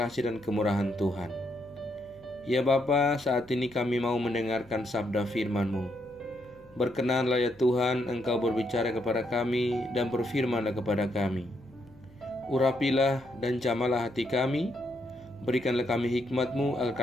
dan kemurahan Tuhan. Ya Bapa, saat ini kami mau mendengarkan sabda firman-Mu. Berkenanlah ya Tuhan, Engkau berbicara kepada kami dan berfirmanlah kepada kami. Urapilah dan jamalah hati kami. Berikanlah kami hikmat-Mu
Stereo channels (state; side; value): noise; left; hum, 27 dB below the sound